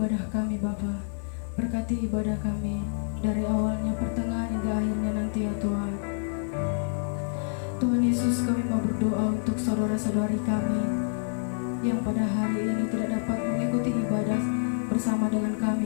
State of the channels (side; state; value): right; silent; 60 dB below the other